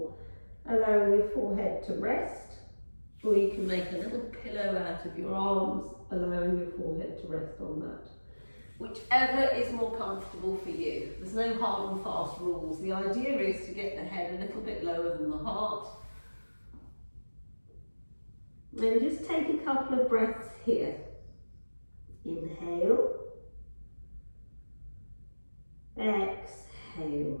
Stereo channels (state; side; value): inverted; both; correlation -1.00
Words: allowing your forehead to rest, or you can make a little pillow out of your arms, allowing your forehead to rest on that. Whichever is more comfortable for you. There's no hard and fast rules. The idea is to get the head a little bit lower than the heart. Then just take a couple of breaths here. Inhale. Exhale.